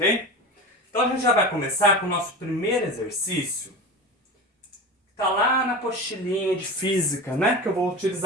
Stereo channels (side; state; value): both; normal; correlation 0.28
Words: Então a gente já vai começar com o nosso primeiro exercício. Tá lá na apostilinha de física, né? Que eu vou